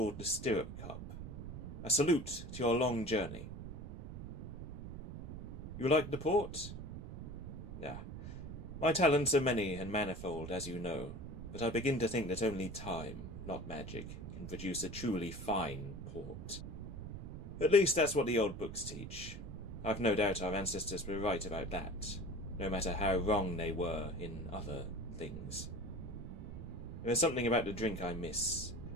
the stirrup cup. A salute to your long journey. You like the port? My talents are many and manifold, as you know, but I begin to think that only time, not magic, can produce a truly fine port. At least that's what the old books teach. I've no doubt our ancestors were right about that, no matter how wrong they were in other things. There is something about the drink I miss,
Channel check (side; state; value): right; noise; rumble, 9 dB below the sound